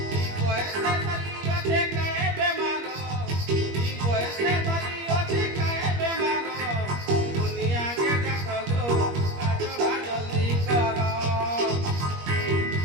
ই বয়সে ধরি ওঠে কায়ে বেমার ই বয়সে ধরি ওঠে কায়ে বেমার দুনিয়াকে ডাক গো বুকা ঝড়া জলদি কর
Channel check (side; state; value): left; late; 21 ms